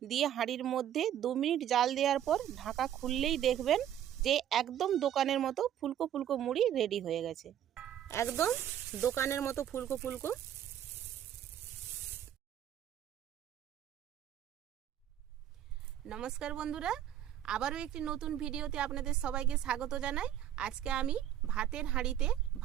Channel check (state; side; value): quieter; left; 10.8 dB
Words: দিয়ে হাঁড়ির মধ্যে 2 মিনিট জাল দেওয়ার পর ঢাকা খুললেই দেখবেন যে একদম দোকানের মতো ফুলকো ফুলকো মুড়ি রেডি হয়ে গেছে। একদম দোকানের মতো ফুলকো ফুলকো। নমস্কার বন্ধুরা, আবারও একটি নতুন ভিডিওতে আপনাদের সবাইকে স্বাগত জানাই। আজকে আমি ভাতের হাঁড়িতে